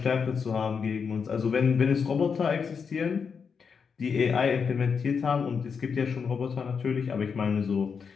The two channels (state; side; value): quieter; right; 6.0 dB